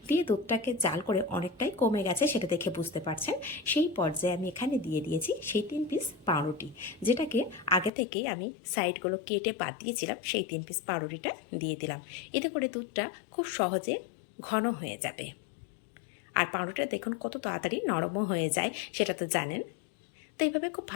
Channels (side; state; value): right; drops out; at 7.9 s